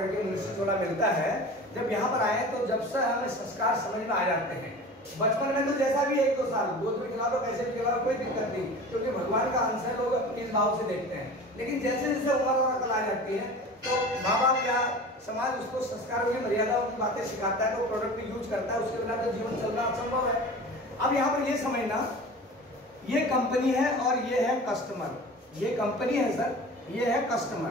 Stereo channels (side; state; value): both; normal; correlation 0.37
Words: मनुष्य थोड़ा मिलता है। जब यहाँ पर आए तो जब से हमें संस्कार समझ में आ जाते हैं। बचपन में तो जैसा भी 1-2 साल गोद में खिला दो, कैसे भी खिला दो, कोई दिक्कत नहीं, क्योंकि भगवान का अंश है, लोग इस भाव से देखते हैं। लेकिन जैसे जैसे उम्र और अकल आ जाती है तो माँ बाप या समाज उसको संस्कारों की मर्यादाओं की बातें सिखाता है, तो प्रोडक्ट यूज करता है, उसके बिना तो जीवन चलना असंभव है। अब यहाँ पर ये समझना, ये कंपनी है और ये है कस्टमर। ये कंपनी है सर, ये है